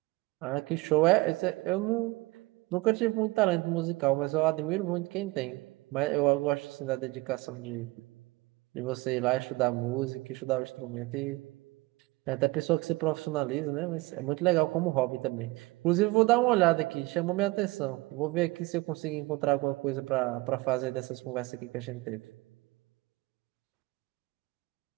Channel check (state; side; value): quieter; left; 22.2 dB